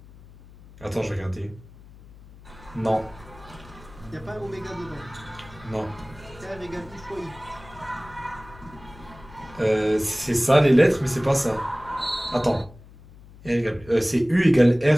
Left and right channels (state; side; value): noise; left; hum, 21 dB below the sound